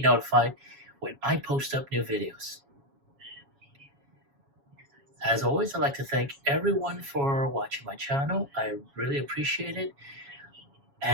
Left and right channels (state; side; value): late; left; 7.2 ms